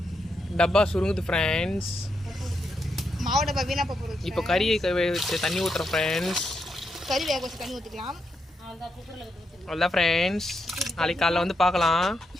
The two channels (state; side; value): normal; both; correlation 0.82